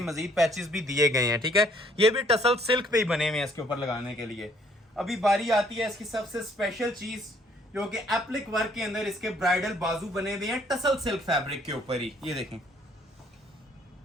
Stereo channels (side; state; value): both; normal; correlation 0.63